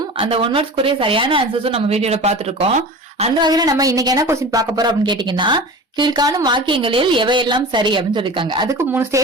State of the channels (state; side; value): normal; both; correlation 0.34